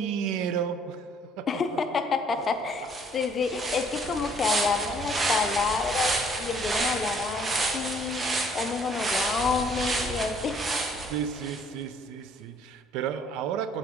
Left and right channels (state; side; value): normal; both; correlation 0.61